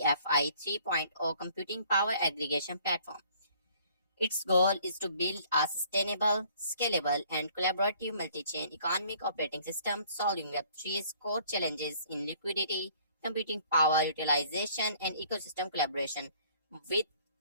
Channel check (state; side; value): inverted; both; correlation -0.58